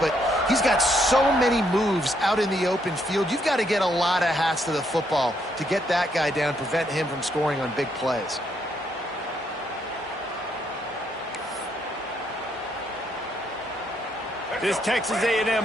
he's got so many moves out in the open field. You've got to get a lot of hats to the football to get that guy down, prevent him from scoring on big plays. This Texas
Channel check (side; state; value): both; normal; correlation 0.74